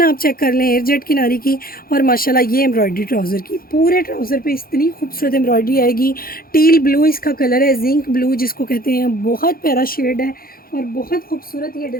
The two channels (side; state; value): right; late; 0.43 ms